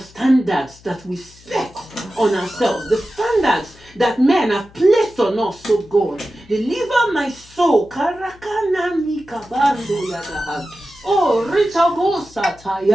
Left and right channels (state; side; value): noise; left; hum, 25 dB below the sound